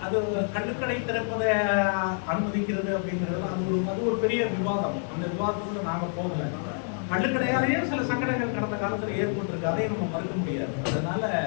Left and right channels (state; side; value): silent; right; 60 dB below the other